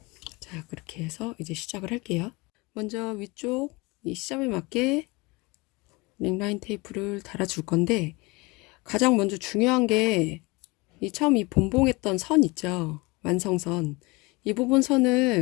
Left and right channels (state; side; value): quieter; right; 25.1 dB